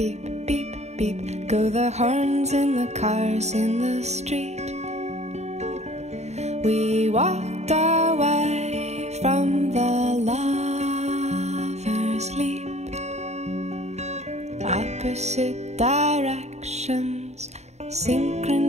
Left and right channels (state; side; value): late; left; 0.32 ms